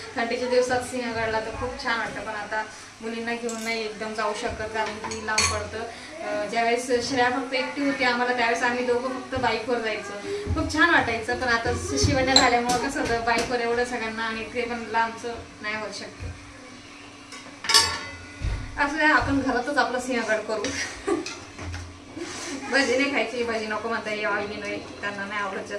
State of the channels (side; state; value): both; identical; correlation 1.00